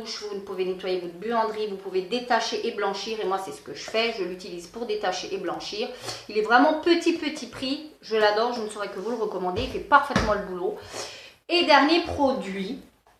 vous pouvez nettoyer votre buanderie, vous pouvez détacher et blanchir, et moi c'est ce que je fais, je l'utilise pour détacher et blanchir. Il est vraiment petit prix, je l'adore, je ne saurais que vous le recommander, il fait parfaitement le boulot. Et dernier produit,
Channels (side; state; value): both; identical; correlation 1.00